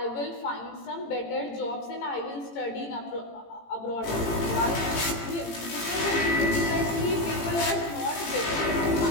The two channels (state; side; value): late; right; 18 ms